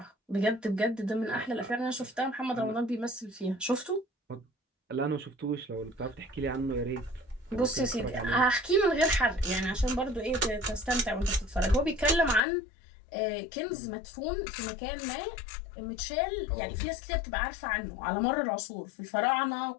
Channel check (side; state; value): right; drops out; at 12.4 s